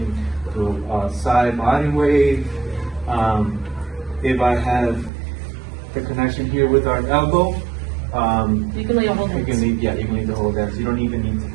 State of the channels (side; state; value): left; drops out; at 5.1 s